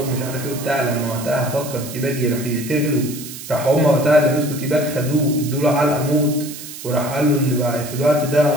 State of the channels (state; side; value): noise; right; hiss, 12 dB below the sound